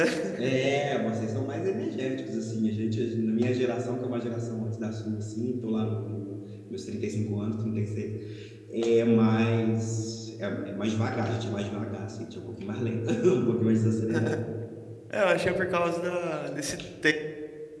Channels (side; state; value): both; identical; correlation 1.00